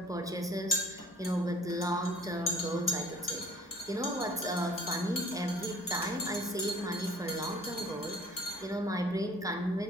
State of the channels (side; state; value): both; normal; correlation 0.51